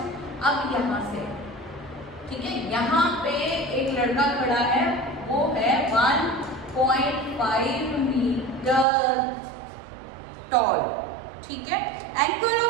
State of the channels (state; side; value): drops out; left; at 8.8 s